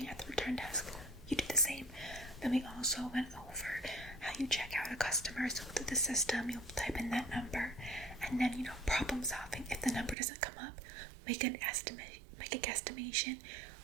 at the return desk, you do the same. Then we also went over how you check out a customer. So through the system, you'll type in that number, and then, you know, problem solving. If the number doesn't come up, make a guesstimation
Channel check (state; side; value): drops out; left; at 10.2 s